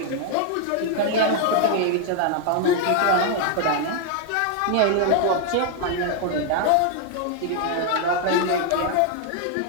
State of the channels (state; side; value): different; both; correlation 0.00